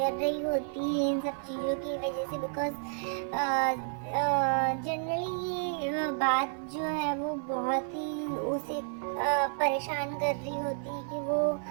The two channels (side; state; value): left; silent; 57 dB below the other